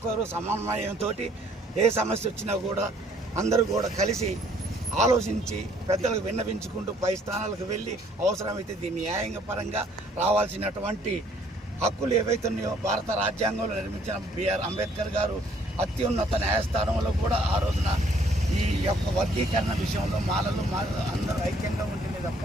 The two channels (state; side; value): normal; both; correlation 0.62